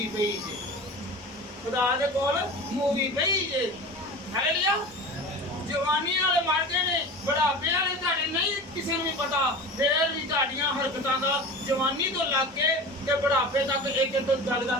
ਪਈ ਜੇ, ਖੁਦਾ ਦੇ ਕੋਲ ਮੂਵੀ ਪਈ ਜੇ। ਹਾਲੇਲੂਇਆ। ਜਵਾਨੀ ਵਾਲੇ ਮਰ ਗਏ ਨੇ, ਬੁਢਾਪੇ ਵਾਲੇ ਤੁਹਾਡੇ ਨਹੀਂ ਕਿਸੇ ਨੂੰ ਵੀ ਪਤਾ, ਫੇਰ ਵੀ ਤੁਹਾਡੀਆਂ ਹਰਕਤਾਂ ਦਾ ਜਵਾਨੀ ਤੋਂ ਲੱਗ ਕੇ ਤੇ ਬੁਢਾਪੇ ਤੱਕ ਇੱਕ ਇੱਕ ਗੱਲ ਦਾ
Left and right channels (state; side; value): normal; both; correlation 0.33